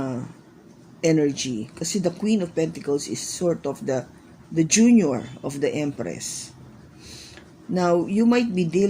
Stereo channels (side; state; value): both; identical; correlation 1.00